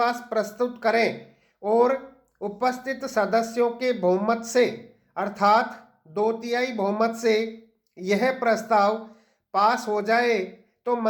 प्रस्तुत करें और उपस्थित सदस्यों के बहुमत से अर्थात 2/3 बहुमत से यह प्रस्ताव पास हो जाए तो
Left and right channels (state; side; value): identical; both; correlation 1.00